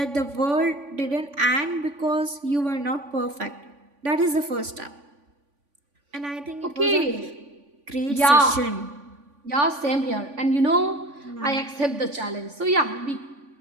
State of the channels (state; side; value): late; left; 3.5 ms